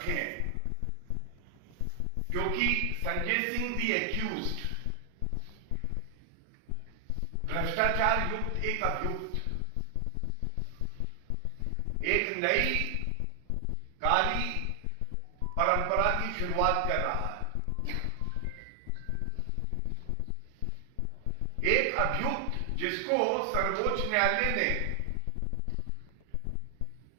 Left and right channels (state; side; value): different; both; correlation 0.00